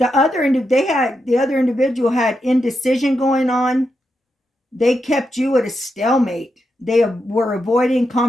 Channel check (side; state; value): both; normal; correlation 0.85